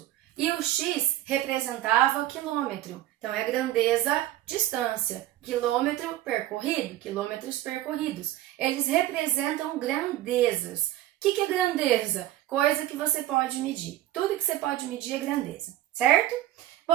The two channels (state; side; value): quieter; left; 14.3 dB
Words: E o x representava quilômetro. Então, é grandeza, distância. Quilômetro percorrido, quilômetros percorridos. Eles representam grandezas. O que é grandeza? Coisa que você pode medir. Tudo que você pode medir é grandeza, certo?